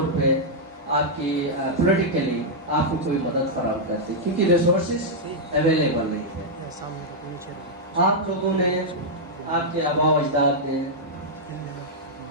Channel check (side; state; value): both; normal; correlation -0.06